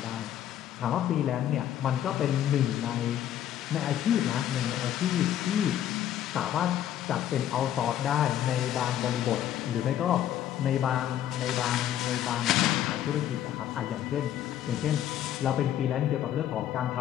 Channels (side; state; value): right; quieter; 11.2 dB